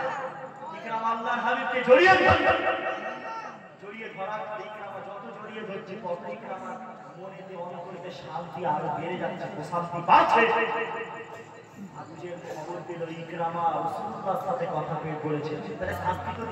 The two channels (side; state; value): both; identical; correlation 1.00